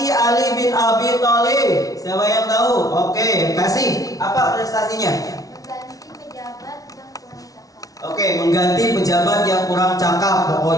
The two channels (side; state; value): right; late; 0.18 ms